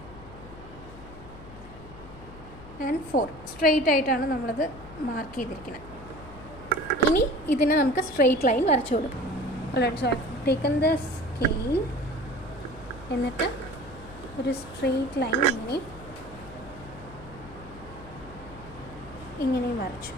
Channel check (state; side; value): noise; left; hum, 17 dB below the sound